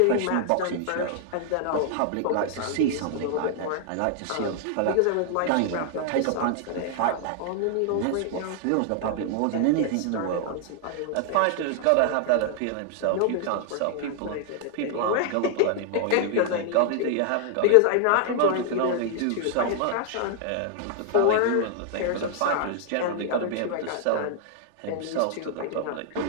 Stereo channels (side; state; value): both; different; correlation 0.00